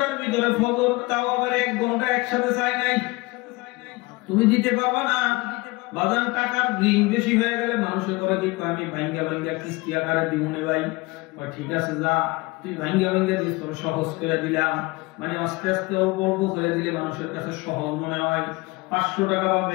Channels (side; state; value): right; quieter; 23.6 dB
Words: ভিতরে ফজর, তাও আবার 1 ঘন্টা একসাথে চাই নাই। তুমি দিতে পারবা না। বাজার টাকার ঋণ বেশি হয়ে গেলে মানুষের করে কি আমি ভাঙ্গা ভাঙ্গা কিস্তি আকারে দিমুনে ভাই। ঠিক আছে যা তুই ভাঙ্গা ভাঙ্গা দিস, তোর সহজ করে দিলাম, মানে আস্তে আস্তে অল্প অল্প করে দিলে মানুষের কাছে সহজ মনে হয়। 500 টাকা